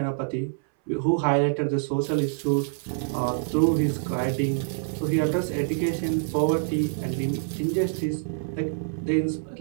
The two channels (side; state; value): left; silent; 61 dB below the other